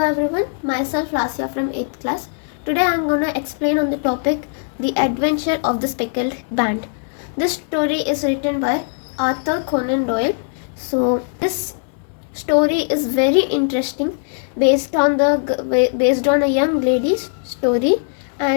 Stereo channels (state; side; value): silent; right; 66 dB below the other